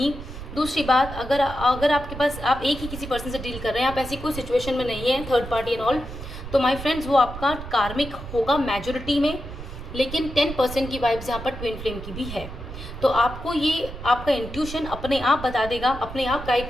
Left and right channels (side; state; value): right; noise; rumble, 11 dB below the sound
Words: दूसरी बात, अगर आपके पास आप एक ही किसी पर्सन से डील कर रहे हैं, आप ऐसी कोई सिचुएशन में नहीं है, थर्ड पार्टी एंड ऑल, तो माय फ्रेंड्स वो आपका कार्मिक होगा मेजॉरिटी में, लेकिन 10% की वाइब्स यहाँ पर ट्विन फ्लेम की भी है। तो आपको ये आपका इंट्यूशन अपने आप बता देगा, अपने आप गाइड